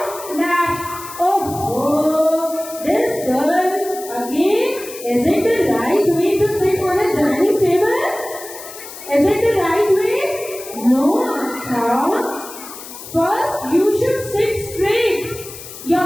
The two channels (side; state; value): left; noise; hiss, 14 dB below the sound